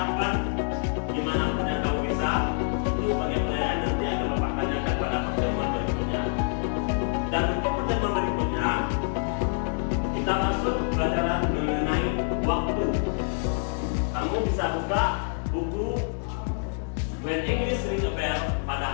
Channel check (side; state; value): right; silent; digital silence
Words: dimanapun yang kamu bisa. Itu sebagai penilaian nanti akan Bapak tanyakan pada pertemuan berikutnya. Dan untuk pertemuan berikutnya kita masuk pelajaran mengenai waktu. Kamu bisa buka buku When English Ring a Bell pada